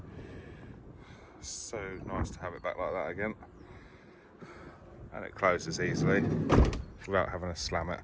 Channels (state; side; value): identical; both; correlation 1.00